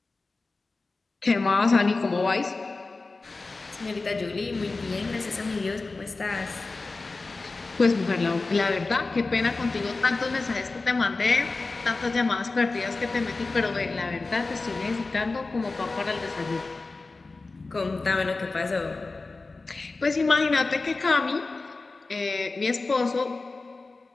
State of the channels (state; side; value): quieter; right; 3.6 dB